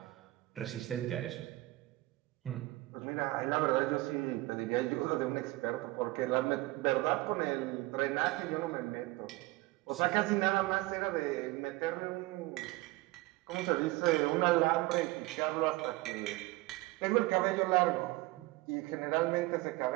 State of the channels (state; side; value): quieter; left; 20.4 dB